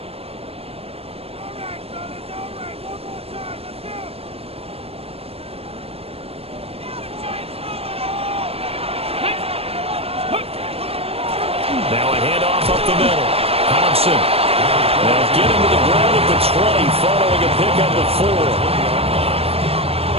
Now a handoff up the middle. Thompson. Now get him to the ground at the 20, following a pickup of 4.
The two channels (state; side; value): late; left; 0.28 ms